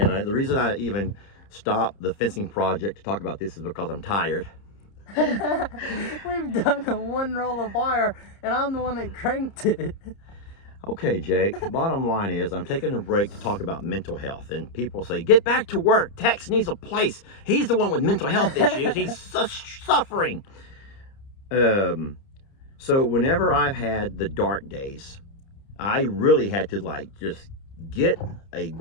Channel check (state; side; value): late; right; 30 ms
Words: the reason I even stopped the fencing project to talk about this is because I'm tired. We've done one roll of wire, and I'm the one that cranked it. Okay, Jake, bottom line is I'm taking a break to talk about mental health. And people say, get back to work. Tex needs a place. He's the one with mental health issues. He's suffering. So whenever I've had the dark days, I really had to like just get a